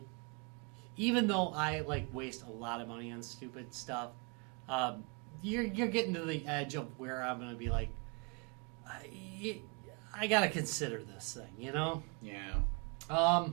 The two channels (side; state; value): left; quieter; 32.7 dB